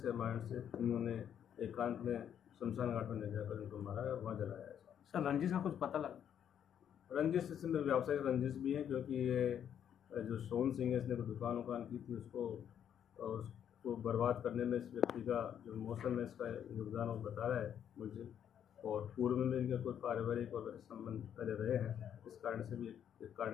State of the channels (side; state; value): right; quieter; 9.2 dB